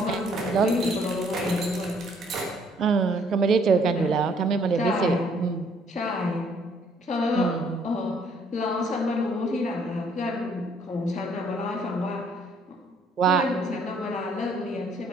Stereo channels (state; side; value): normal; both; correlation 0.64